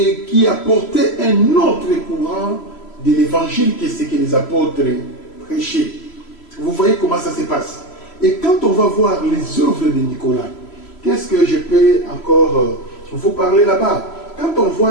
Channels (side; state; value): right; late; 3.0 ms